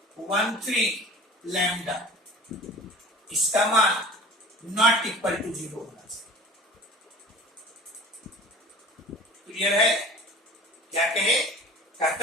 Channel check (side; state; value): both; normal; correlation 0.42